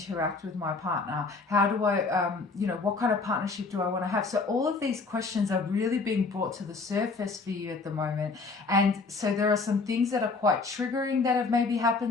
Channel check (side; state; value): right; quieter; 4.1 dB